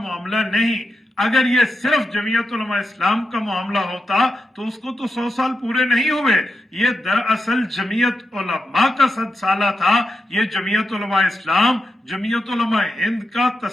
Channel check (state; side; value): normal; both; correlation 0.87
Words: نہیں. اگر یہ صرف جمعیت علماء اسلام کا معاملہ ہوتا تو اس کو تو 100 سال پورے نہیں ہوئے. یہ دراصل جمعیت علماء کا 100 سالہ تھا. یہ جمعیت علماء اسلام جمعیت علماء ہند کا